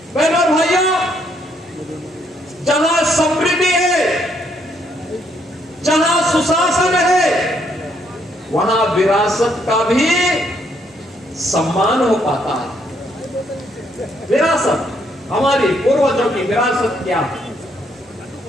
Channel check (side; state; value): both; normal; correlation 0.71